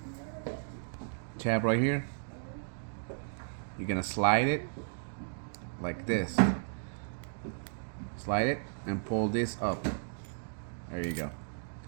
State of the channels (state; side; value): silent; left; digital silence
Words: right here? You're gonna slide it like this. Slide it and pull this up. There you go.